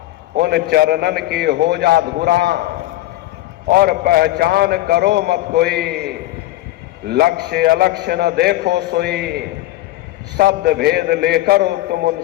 उन चरणन की हो जा धुरा, और पहचान करो मत कोई, लक्ष्य अलक्ष्य न देखो सोई, शब्द भेद लेकर तुम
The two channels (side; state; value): right; quieter; 16.1 dB